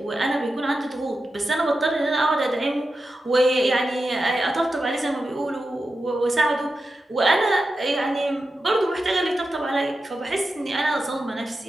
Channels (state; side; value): normal; both; correlation 0.91